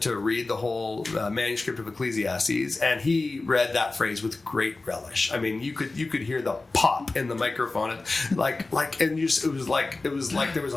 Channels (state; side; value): quieter; right; 3.4 dB